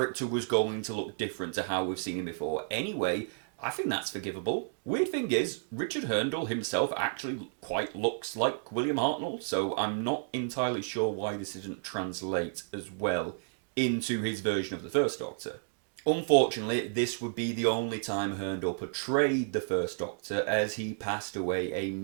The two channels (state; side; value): silent; left; digital silence